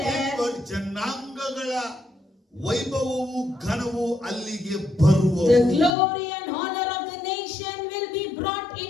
ಜನಾಂಗಗಳ ವೈಭವವು ಘನವು ಅಲ್ಲಿಗೆ ಬರುವುದು. The glory and honor of the nation will be brought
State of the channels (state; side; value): drops out; right; at 6.0 s